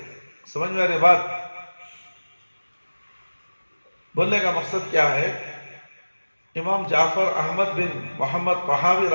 سمجھ میں آ رہی بات؟ بولنے کا مقصد کیا ہے؟ امام جعفر احمد بن محمد طحاوی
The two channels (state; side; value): inverted; both; correlation -1.00